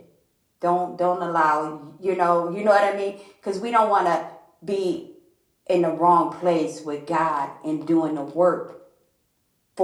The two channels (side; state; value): both; identical; correlation 1.00